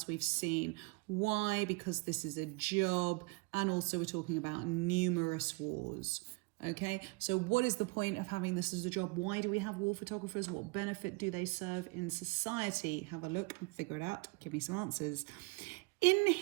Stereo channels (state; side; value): quieter; left; 27.9 dB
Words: we've seen. Why? Because this is a job, and also we're talking about numerous wars. Okay, so what is the point of having this as a job? Why do we have war photographers? What benefit do they serve in society? Have a look and figure it out. Give me some answers. In